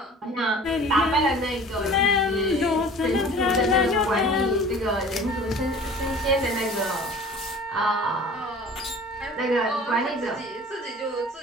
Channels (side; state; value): both; normal; correlation 0.45